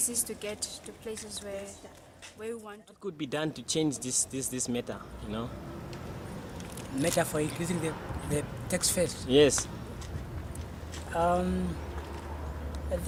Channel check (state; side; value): identical; both; correlation 1.00